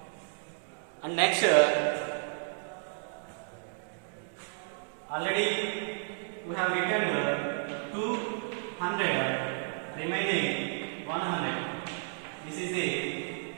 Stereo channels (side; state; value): left; silent; digital silence